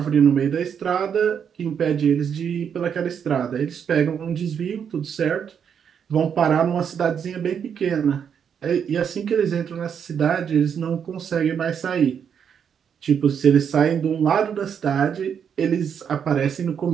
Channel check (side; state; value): left; quieter; 7.7 dB